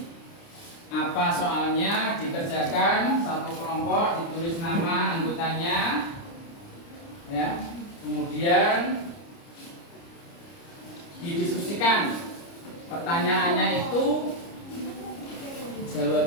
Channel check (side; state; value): right; late; 29 ms